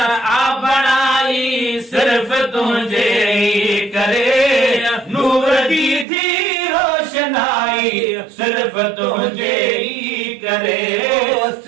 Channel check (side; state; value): left; drops out; at 6.1 s